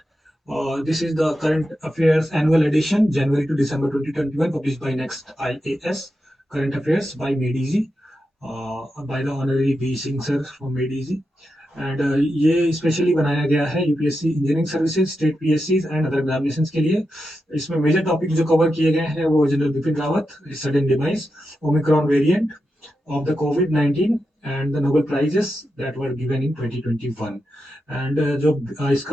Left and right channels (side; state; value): both; normal; correlation 0.88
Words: This is the current affairs annual edition, January to December 2021, published by Next IAS. Current affairs by Made Easy, by the Honorary V Singh sir from Made Easy. And ये specially बनाया गया है UPSC engineering services, state PSC and other examinations के लिए. इसमें major topic जो cover किए गए हैं वो general Bipin Rawat, sudden demise, Omicron variant of the COVID-19 and the Nobel prizes that were given in 2021. And जो